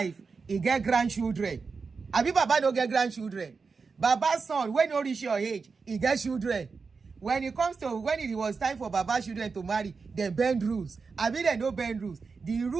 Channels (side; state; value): left; quieter; 4.8 dB